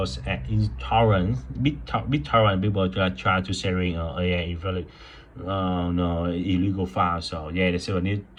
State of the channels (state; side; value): identical; both; correlation 1.00